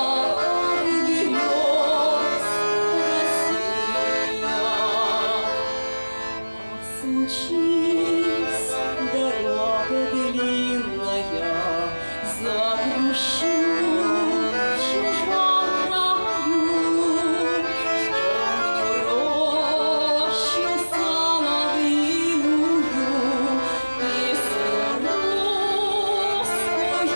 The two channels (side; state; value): both; inverted; correlation -1.00